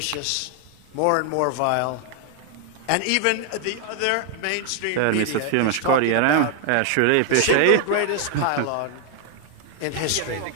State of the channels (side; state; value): both; different; correlation 0.00